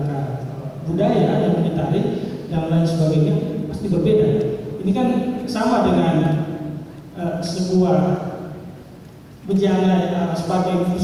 budaya yang ditarik dan lain sebagainya pasti berbeda. Ini kan sama dengan sebuah bejana sebagai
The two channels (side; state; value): both; identical; correlation 1.00